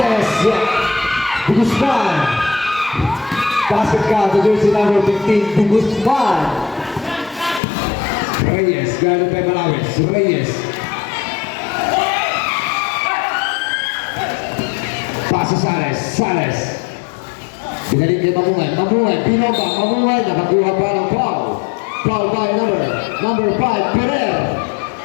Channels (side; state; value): right; drops out; at 7.6 s